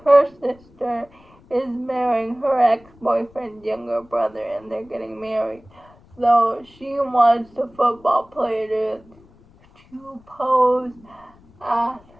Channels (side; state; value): left; noise; rumble, 27 dB below the sound